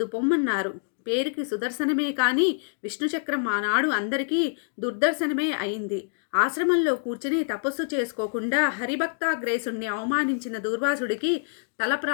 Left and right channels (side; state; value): right; silent; digital silence